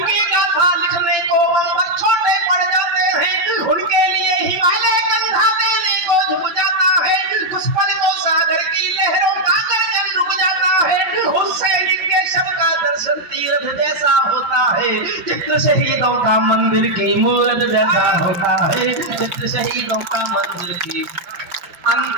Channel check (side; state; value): left; late; 5.8 ms